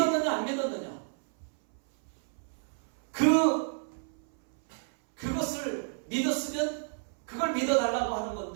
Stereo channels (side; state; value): left; silent; 58 dB below the other